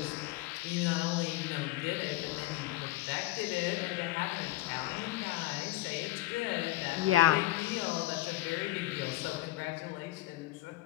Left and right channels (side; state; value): right; quieter; 16.7 dB